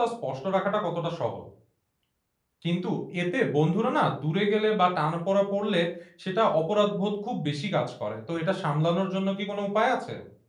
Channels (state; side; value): identical; both; correlation 1.00